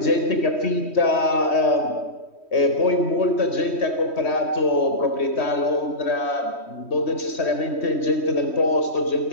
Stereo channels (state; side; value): late; right; 3.1 ms